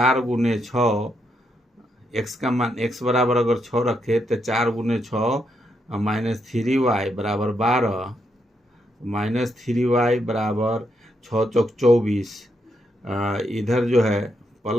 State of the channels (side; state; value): both; normal; correlation 0.79